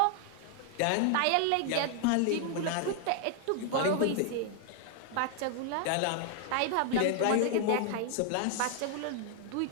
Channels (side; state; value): both; different; correlation 0.00